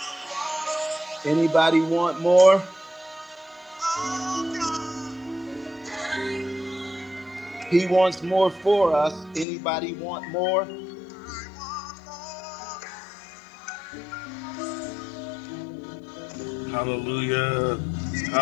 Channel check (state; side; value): drops out; right; at 9.5 s